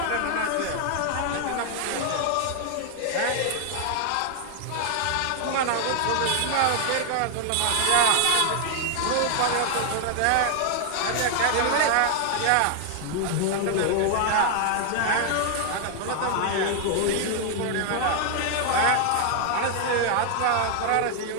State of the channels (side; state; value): both; different; correlation 0.00